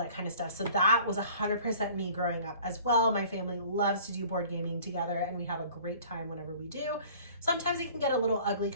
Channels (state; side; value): inverted; both; correlation -0.49